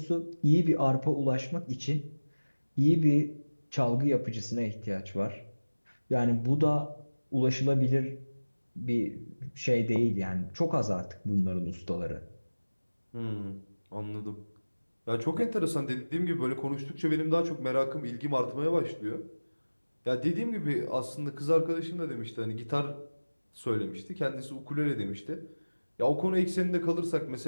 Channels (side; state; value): both; inverted; correlation -1.00